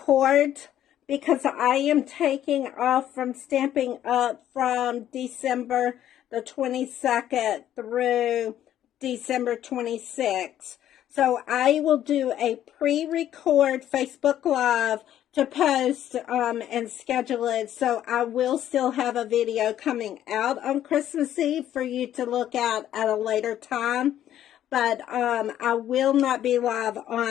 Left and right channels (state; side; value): quieter; right; 11.5 dB